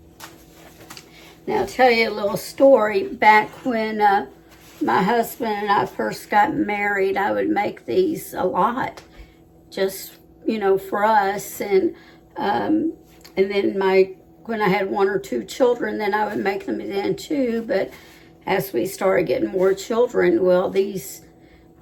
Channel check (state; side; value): identical; both; correlation 1.00